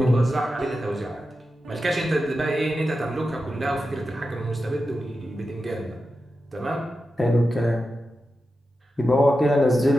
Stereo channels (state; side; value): normal; both; correlation 0.91